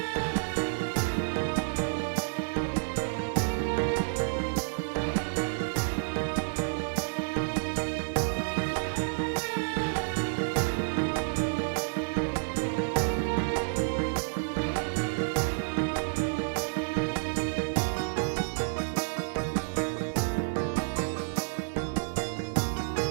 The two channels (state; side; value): silent; left; digital silence